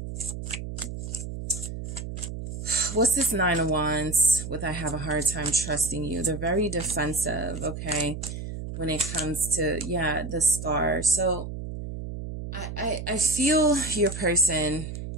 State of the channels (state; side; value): noise; right; hum, 7 dB below the sound